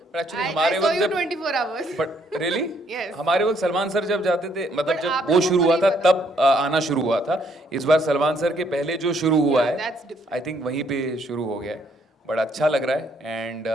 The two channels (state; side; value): normal; both; correlation 0.69